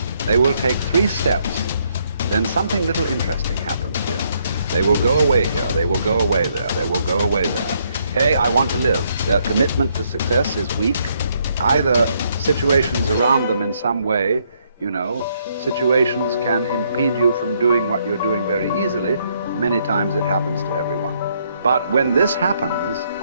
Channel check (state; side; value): inverted; both; correlation -0.72